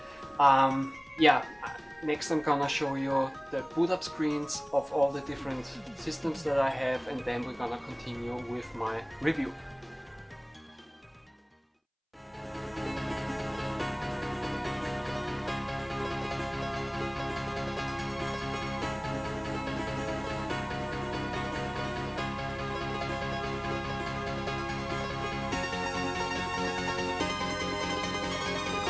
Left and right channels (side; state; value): both; identical; correlation 1.00